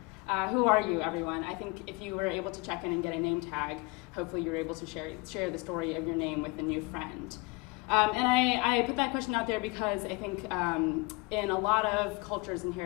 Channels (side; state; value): right; quieter; 26.6 dB